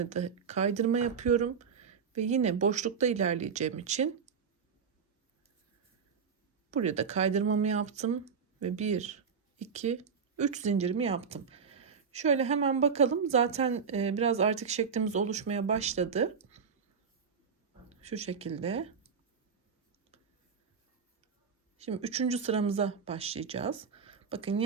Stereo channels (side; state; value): left; quieter; 6.2 dB